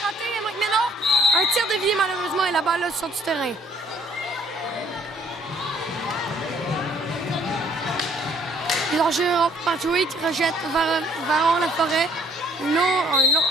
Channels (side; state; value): both; normal; correlation 0.60